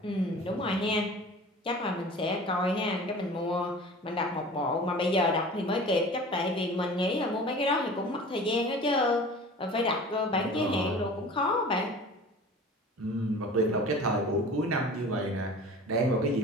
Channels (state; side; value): normal; both; correlation 0.41